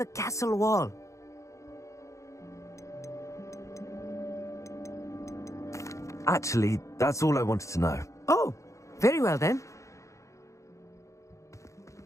castle wall. Actually, that's all I wanted to know. Oh, very well then.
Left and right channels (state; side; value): late; right; 0.15 ms